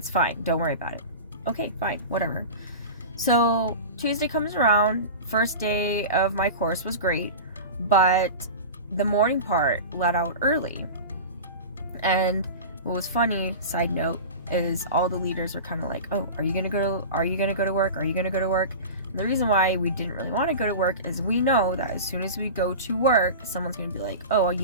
fine. Don't worry about it. Okay, fine, whatever. So Tuesday comes around. First day of my course was great, but the morning part let out early. And what was funny, side note, is all the leaders were kind of like, oh, are you gonna go to work? Are you gonna go to work? And the reason why we didn't really want to go to work is we know that as soon as we go to work, someone's gonna be like, oh,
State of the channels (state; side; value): inverted; both; correlation -0.31